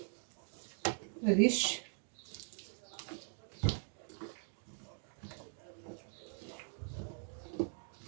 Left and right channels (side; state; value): left; silent; 50 dB below the other